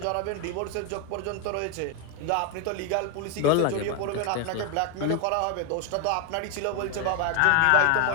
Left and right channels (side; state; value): both; different; correlation 0.01